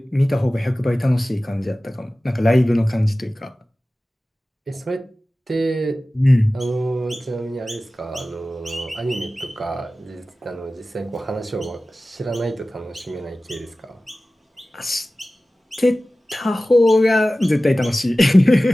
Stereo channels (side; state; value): both; normal; correlation 0.96